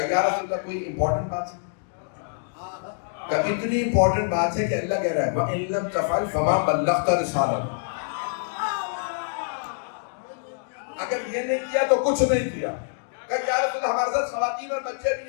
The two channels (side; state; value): right; silent; digital silence